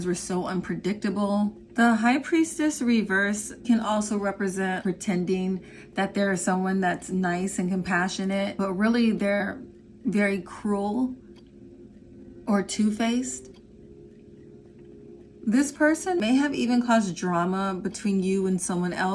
were so unpredictable. The High Priestess reverse can also represent pretending that there is someone that's nice and compassionate, but really they're very cruel or two-faced. This person may have even caused drama between you and someone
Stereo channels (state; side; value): identical; both; correlation 1.00